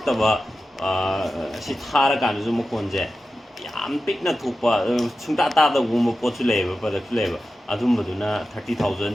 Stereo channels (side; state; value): both; normal; correlation 0.93